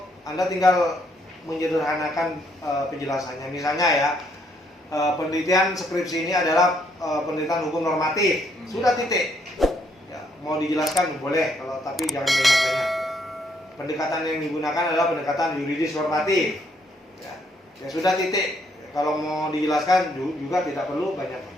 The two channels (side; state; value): both; normal; correlation 0.71